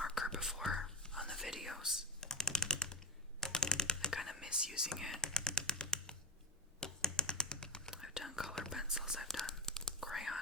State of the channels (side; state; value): both; normal; correlation 0.15